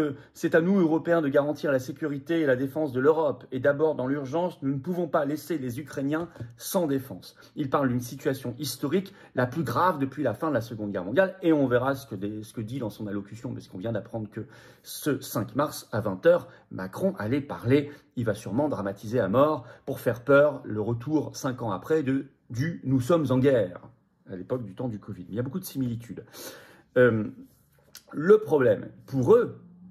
c'est à nous, Européens, de garantir la sécurité et la défense de l'Europe. Et d'abord, dans l'urgence, nous ne pouvons pas laisser les Ukrainiens sans défense. Il parle d'une situation historique, la plus grave depuis la fin de la Seconde Guerre mondiale. Et on verra ce que dit dans son allocution, parce qu'on vient d'apprendre que ce 5 mars, à 20 h, Macron allait parler. Il va sûrement dramatiser à mort pour faire peur le retour, 5 ans après, du « nous sommes en guerre », à l'époque du temps du Covid. Il y a beaucoup de similitudes. Le problème pour eux,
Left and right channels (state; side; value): identical; both; correlation 1.00